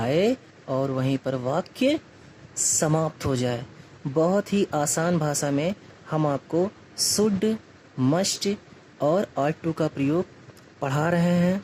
और वहीं पर वाक्य समाप्त हो जाए। बहुत ही आसान भाषा में हम आपको शुड, मस्ट और ought to का प्रयोग पढ़ा रहे हैं,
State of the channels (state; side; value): identical; both; correlation 1.00